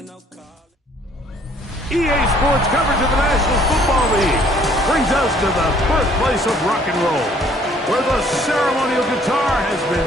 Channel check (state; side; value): normal; both; correlation 0.60